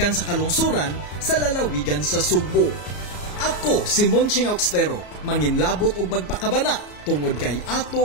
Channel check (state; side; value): late; right; 34 ms